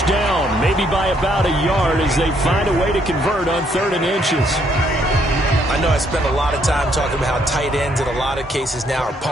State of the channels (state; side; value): normal; both; correlation 0.70